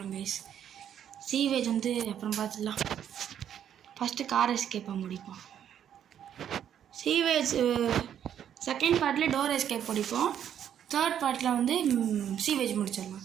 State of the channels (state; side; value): quieter; left; 9.6 dB